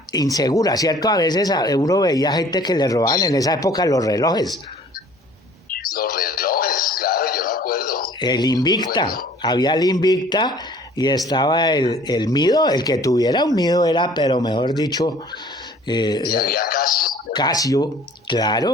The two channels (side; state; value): both; normal; correlation 0.52